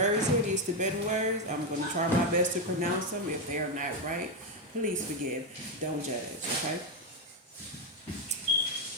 here, these Tibetan words, I'm going to try my best to pronounce them. If they are not right, please forgive. Don't judge, okay?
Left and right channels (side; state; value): both; normal; correlation 0.06